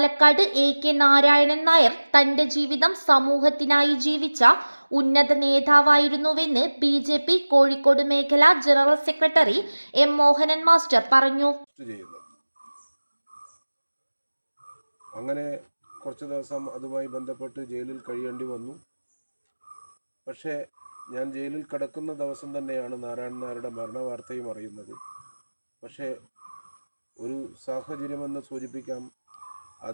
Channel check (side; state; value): both; inverted; correlation -1.00